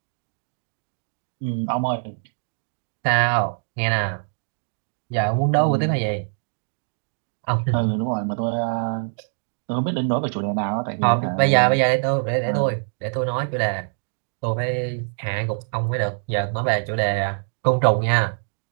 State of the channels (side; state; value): left; silent; digital silence